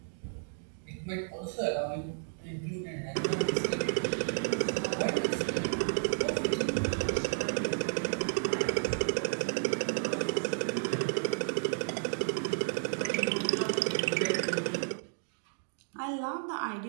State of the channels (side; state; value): left; silent; digital silence